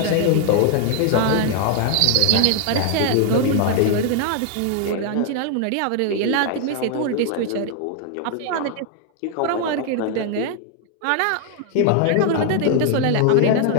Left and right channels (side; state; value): both; different; correlation 0.00